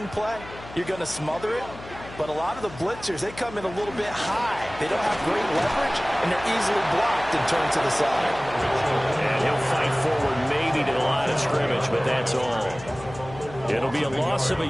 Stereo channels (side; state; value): left; noise; hum, 16 dB below the sound